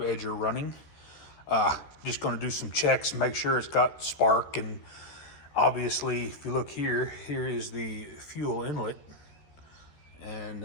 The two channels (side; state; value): right; late; 13 ms